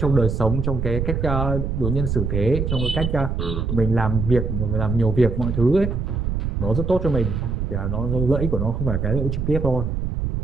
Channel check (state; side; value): noise; right; rumble, 2 dB below the sound